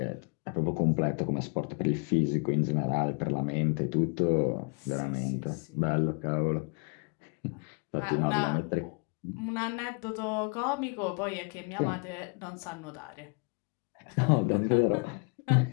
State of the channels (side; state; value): right; quieter; 33.9 dB